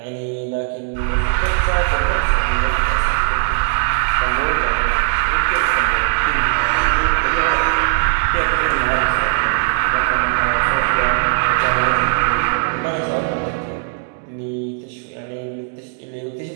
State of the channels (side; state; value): left; silent; digital silence